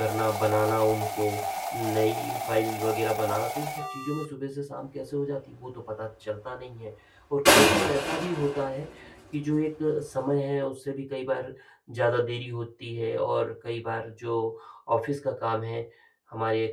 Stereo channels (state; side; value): identical; both; correlation 1.00